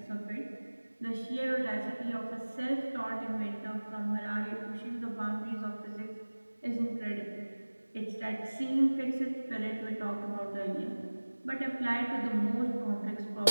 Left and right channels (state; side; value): inverted; both; correlation -1.00